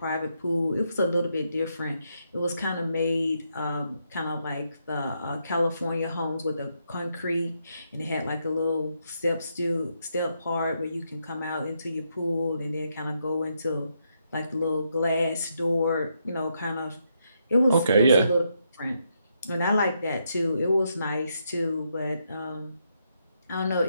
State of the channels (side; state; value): both; inverted; correlation -0.79